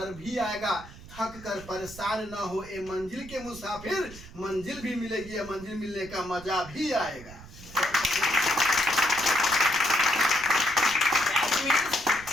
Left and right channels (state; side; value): noise; right; rumble, 17 dB below the sound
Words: भी आएगा। थक कर परेशान न हो ए मंजिल के मुसाफिर, मंजिल भी मिलेगी, या मंजिल मिलने का मजा भी आएगा।